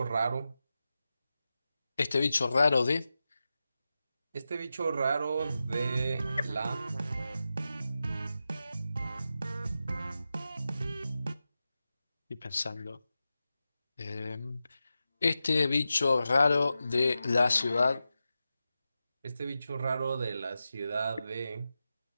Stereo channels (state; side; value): inverted; both; correlation -0.91